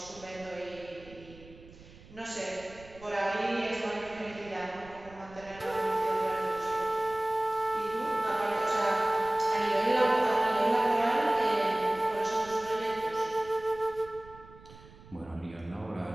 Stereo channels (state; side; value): noise; right; rumble, 21 dB below the sound